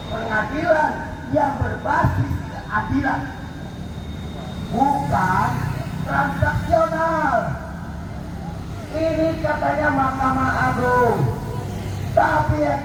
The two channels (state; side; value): identical; both; correlation 1.00